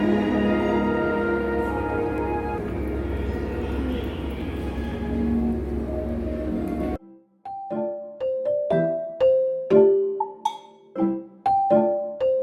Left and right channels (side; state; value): both; identical; correlation 1.00